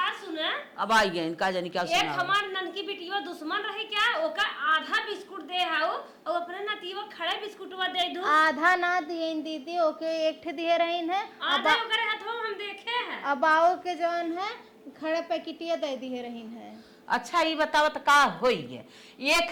सुना, अब आई गए इनका जानी क्या एक हमार ननकी बिटिया दुश्मन रही क्या, ओका आधा बिस्कुट दे हाउ और अपने नतीवा खड़े बिस्कुटवा दे दू। आधा ना दिए दीदी, ओके एक ठे दिए रही है, आधा ओकरे हाथवा में हम देखे हैं। अब आओ के जौन है खड़े पैकेटिया दे दिए रही है। अच्छा ये बताओ तो का होई है,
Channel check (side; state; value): both; identical; correlation 1.00